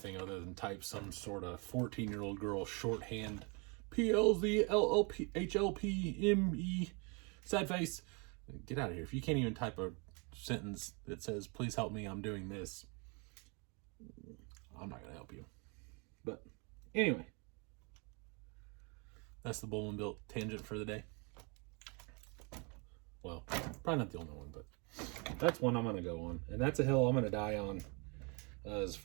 other than type some sort of 14-year-old girl shorthand PLZLLPHLPME sad face. Get out of here. If you can't even type a sentence that says, please help me, I'm doing this, I'm not going to help you. But anyway, that's the Bowman Built tangent for the day. Well, probably not the only one, but that's one I'm going to go on. And that's a hill I'm going to die on, as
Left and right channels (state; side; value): quieter; left; 32.5 dB